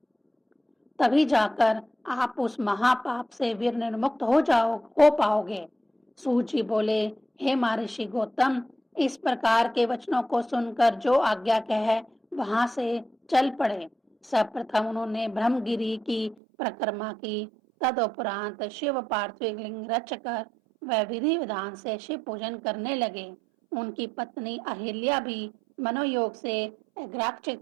तभी जाकर आप उस महापाप से वीर निर्मुक्त हो पाओगे। सूत जी बोले, हे महर्षि गौतम, इस प्रकार के वचनों को सुनकर जो आज्ञा कहे वहां से चल पड़े। सर्वप्रथम उन्होंने ब्रह्मगिरी की परिक्रमा की। तदुपरांत शिव पार्थिव लिंग रचकर वह विधि विधान से शिव पूजन करने लगे। उनकी पत्नी अहिल्या भी मनोयोग से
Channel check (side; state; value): left; drops out; at 16.4 s